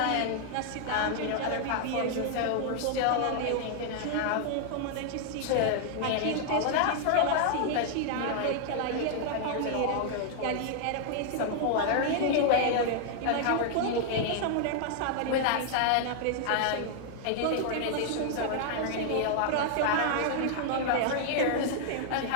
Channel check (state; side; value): different; both; correlation 0.00